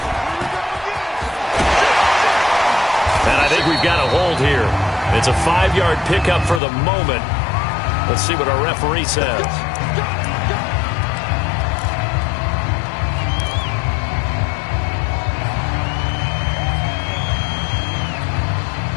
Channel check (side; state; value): right; drops out; at 6.6 s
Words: We've got a hold here. It's a 5-yard pickup for the moment. Let's see what our referee says.